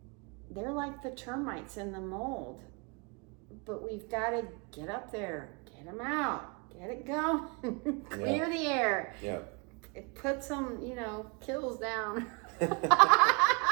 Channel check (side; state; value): left; quieter; 31.7 dB